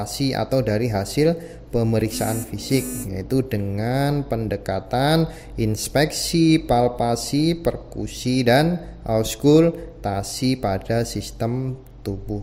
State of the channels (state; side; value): identical; both; correlation 1.00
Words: atau dari hasil pemeriksaan fisik, yaitu dengan pendekatan inspeksi, palpasi, perkusi dan auskultasi pada sistem